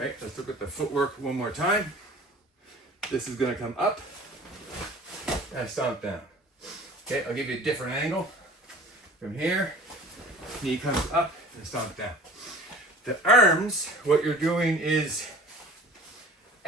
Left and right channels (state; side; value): normal; both; correlation 0.44